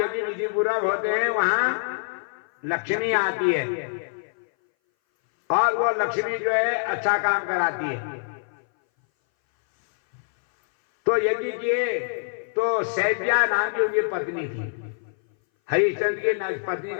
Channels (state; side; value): silent; right; 59 dB below the other